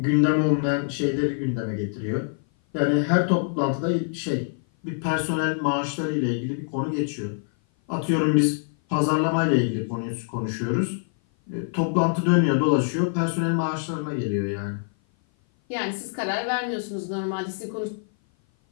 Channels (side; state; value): right; silent; 56 dB below the other